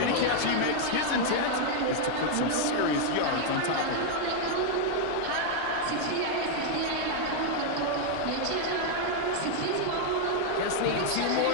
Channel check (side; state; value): both; different; correlation 0.00